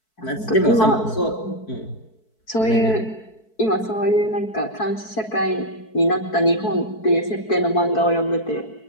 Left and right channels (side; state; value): right; late; 4.6 ms